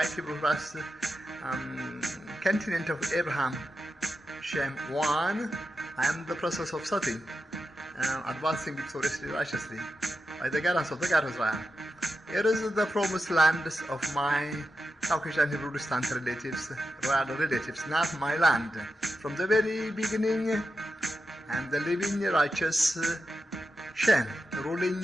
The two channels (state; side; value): normal; both; correlation 0.89